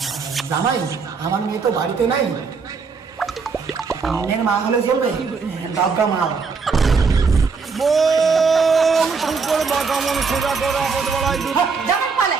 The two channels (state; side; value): quieter; left; 5.0 dB